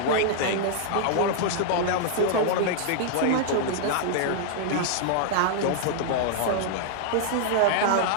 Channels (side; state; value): both; different; correlation -0.01